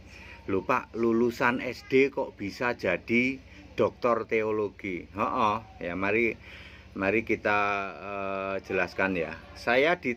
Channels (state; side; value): identical; both; correlation 1.00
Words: Lupa, lulusan SD kok bisa jadi doktor teologi? Ya mari kita jelaskan ya. Saya